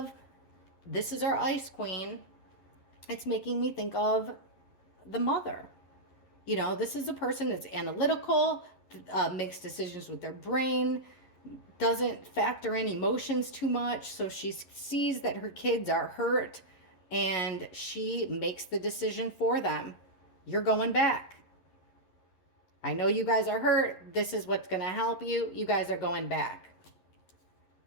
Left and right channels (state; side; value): late; right; 11 ms